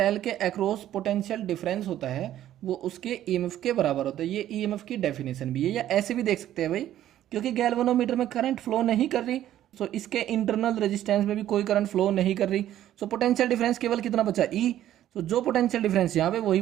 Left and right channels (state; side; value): quieter; left; 12.3 dB